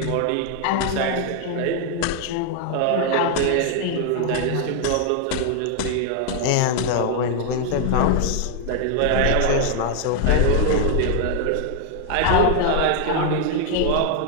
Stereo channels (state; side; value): different; both; correlation 0.00